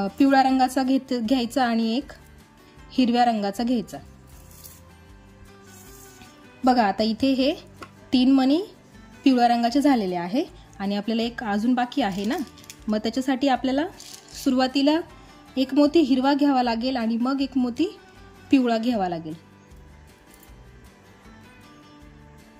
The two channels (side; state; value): both; identical; correlation 1.00